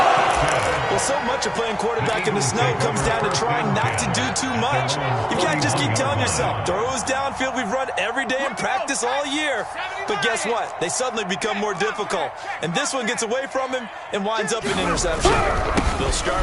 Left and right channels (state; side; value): identical; both; correlation 1.00